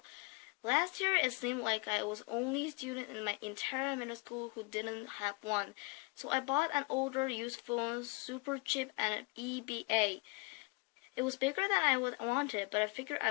Last year, it seemed like I was the only student in my entire middle school who didn't have one, so I bought an older used phone, super cheap, and an EBA. It was bigger than I wanted, but I figured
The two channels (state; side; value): quieter; right; 28.5 dB